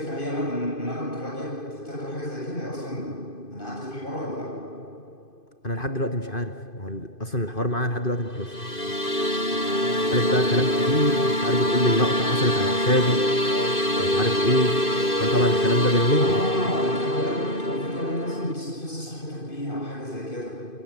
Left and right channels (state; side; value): late; right; 2.5 ms